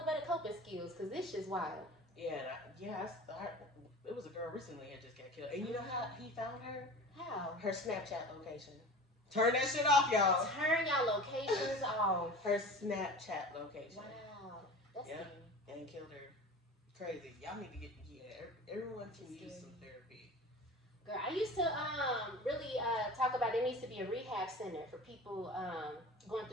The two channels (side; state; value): both; normal; correlation 0.36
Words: better coping skills because this shit's wild. Yeah, it was a girl recently that just got killed. And you know how he found her? How? Her Snapchat location. Turn that shit off, y'all. Turn y'all locations off. Her Snapchat location. Wow. That's and killed her. Crazy. Y'all need to get, everyone can use some therapy. Girl, I used to really talk about there needs to be a rehab center for people going